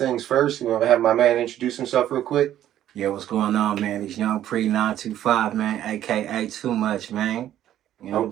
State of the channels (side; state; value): left; quieter; 11.9 dB